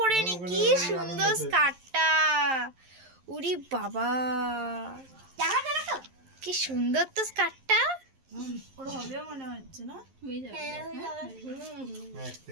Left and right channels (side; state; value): left; late; 11 ms